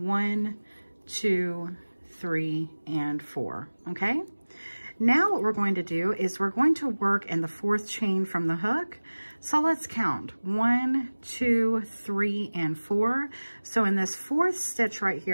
2, 3, and 4, okay? Now what we're going to do is we're going to work in the 4th chain from the hook. So let's count. 1, 2, 3, and 4. So in this 4th stitch right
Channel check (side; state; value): both; inverted; correlation -1.00